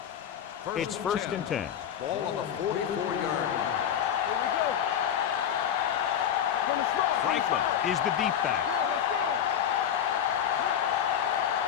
It's first and 10. Ball on the 44-yard line. Franklin is the deep back. Let's go.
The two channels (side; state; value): right; quieter; 9.2 dB